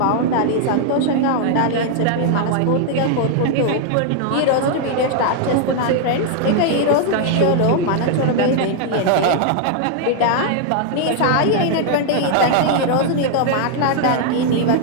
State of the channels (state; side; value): different; both; correlation 0.00